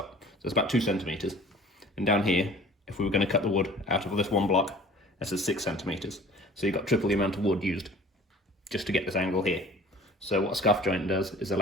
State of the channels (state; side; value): normal; both; correlation 0.46